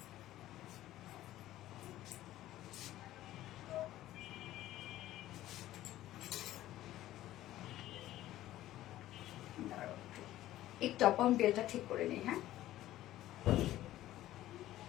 একটু আপন বেলটা ঠিক করে নিই। হ্যাঁ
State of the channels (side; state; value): right; quieter; 14.4 dB